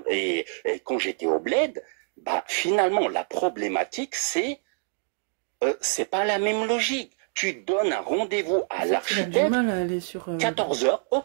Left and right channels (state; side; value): silent; left; digital silence